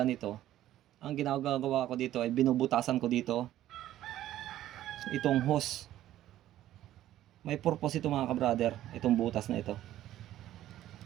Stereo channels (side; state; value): left; quieter; 13.3 dB